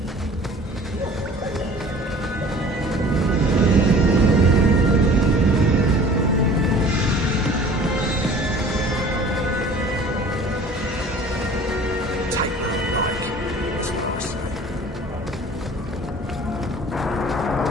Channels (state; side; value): normal; both; correlation 0.47